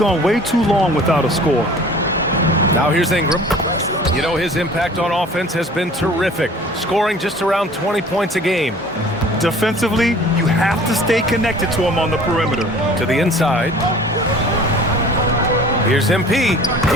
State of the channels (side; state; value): both; normal; correlation 0.47